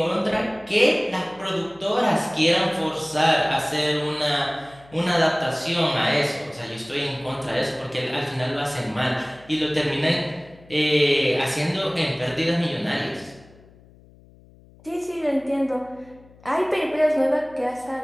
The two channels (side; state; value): left; noise; hum, 25 dB below the sound